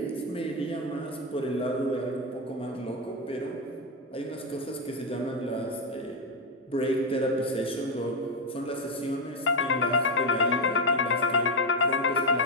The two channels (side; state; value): both; normal; correlation 0.08